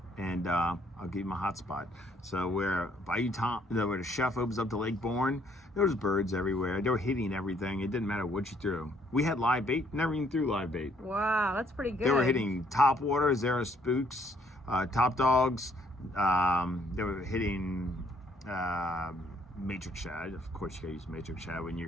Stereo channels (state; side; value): normal; both; correlation 0.67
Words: and I'll give you my hot spot. So where where the chef opens up to Lake Bourne, there was birds everywhere. They were hitting everything. It didn't matter what you threw. We had live bait. Never even threw live bait. Wow, that's pretty good. They were hitting top water, Zara spooks, top dogs. They were hitting matrix shad. Of course, you gotta use matrix shad when